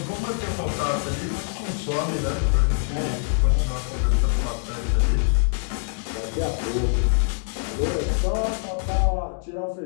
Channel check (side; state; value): right; silent; digital silence